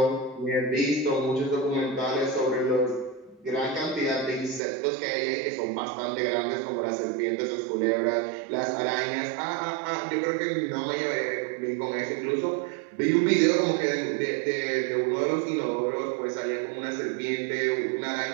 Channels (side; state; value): left; drops out; at 4.6 s